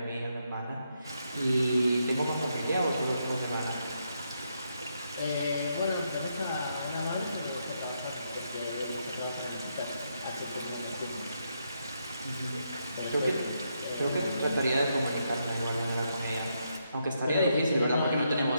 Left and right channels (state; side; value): inverted; both; correlation -0.79